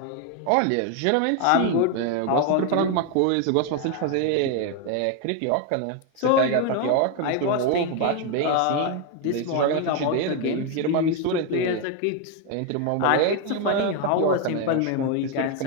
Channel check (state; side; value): different; both; correlation 0.01